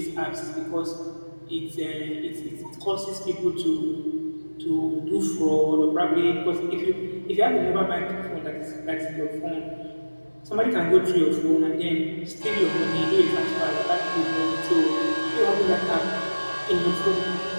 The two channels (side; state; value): both; inverted; correlation -1.00